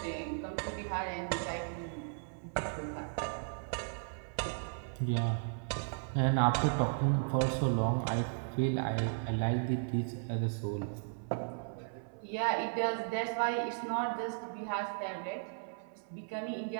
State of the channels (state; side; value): silent; left; 54 dB below the other